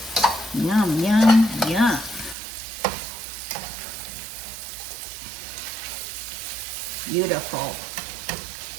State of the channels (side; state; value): left; drops out; at 2.4 s